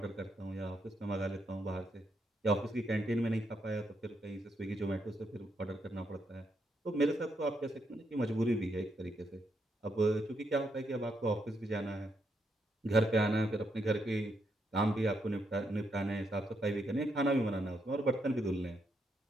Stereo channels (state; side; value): normal; both; correlation 0.79